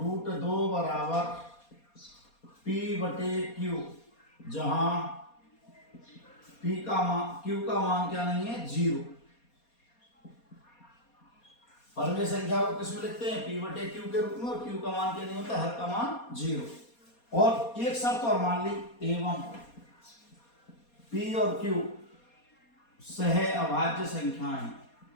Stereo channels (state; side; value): late; right; 4.2 ms